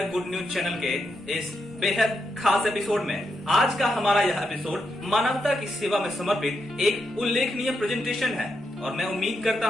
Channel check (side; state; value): both; normal; correlation 0.83